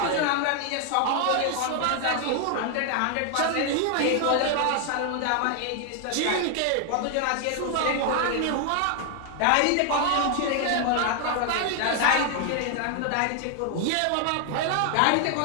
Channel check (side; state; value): both; different; correlation 0.00